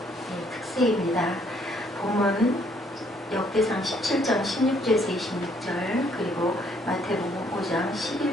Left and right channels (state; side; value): normal; both; correlation 0.66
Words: 특세입니다. 본문 역대상 17장 16절에서 26절 그리고 마태복음 5장 11,